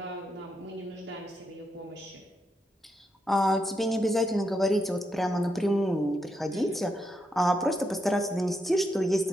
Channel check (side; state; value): both; normal; correlation 0.81